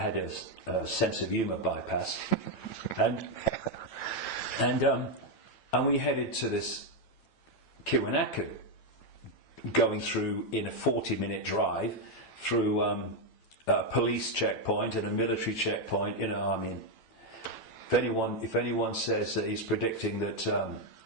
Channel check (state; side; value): late; right; 9.0 ms